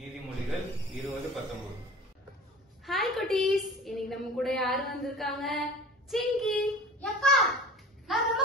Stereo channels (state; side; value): normal; both; correlation 0.40